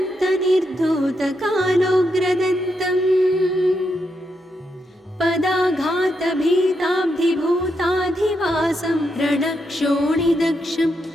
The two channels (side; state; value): both; normal; correlation 0.82